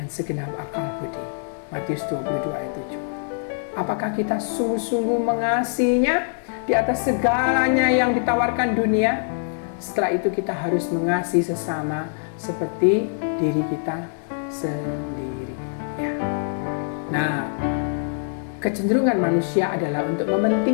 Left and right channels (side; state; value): right; silent; digital silence